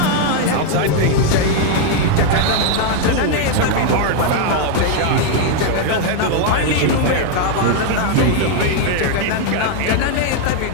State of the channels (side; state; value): both; different; correlation 0.01